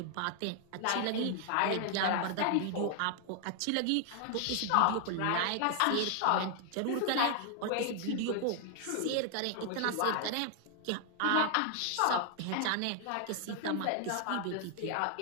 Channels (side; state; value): both; different; correlation 0.00